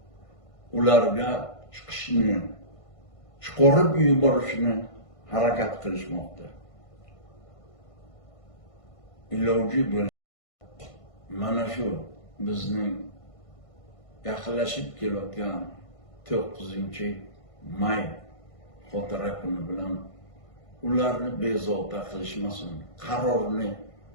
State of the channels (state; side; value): late; right; 1.5 ms